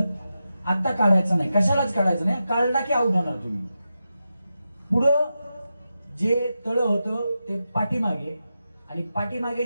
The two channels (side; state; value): both; inverted; correlation -0.90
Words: आता काढायचं नाही, कशालाच काढायचं नाही. काढला की आउट होणार तुम्ही. पुढं जे तळ होतं ते पाठीमागे आणि पाठीमागे